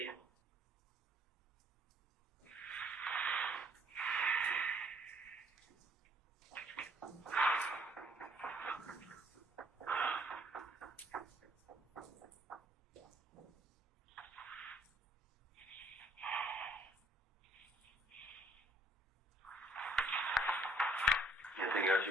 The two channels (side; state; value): both; normal; correlation 0.63